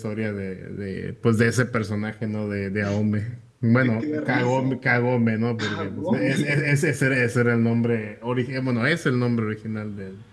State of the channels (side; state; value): both; identical; correlation 1.00